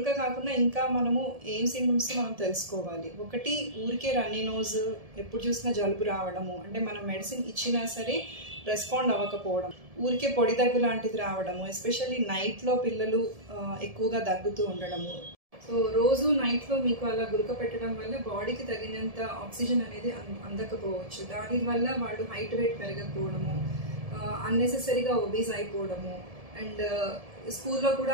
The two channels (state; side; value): late; left; 1.7 ms